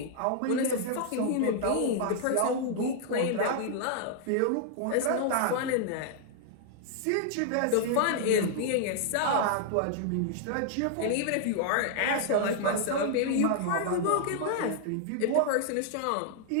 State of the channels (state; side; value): different; both; correlation -0.01